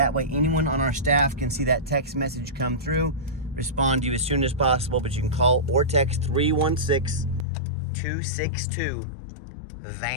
way anyone on our staff can see that text message come through, respond to you as soon as possible, but you can call or text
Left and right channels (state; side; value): drops out; right; at 7.5 s